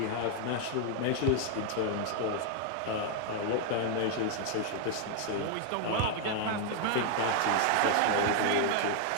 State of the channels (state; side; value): different; both; correlation 0.00